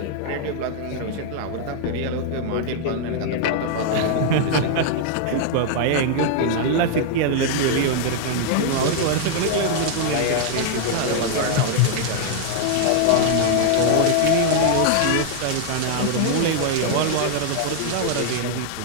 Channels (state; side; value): different; both; correlation -0.01